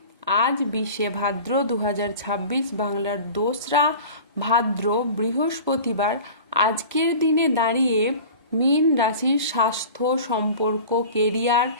আজ 20 ভাদ্র 2026 বাংলার 2রা ভাদ্র বৃহস্পতিবার আজকের দিনে দাঁড়িয়ে মীন রাশির স্বাস্থ্য, সম্পর্ক, কেরিয়ার,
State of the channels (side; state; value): both; inverted; correlation -0.39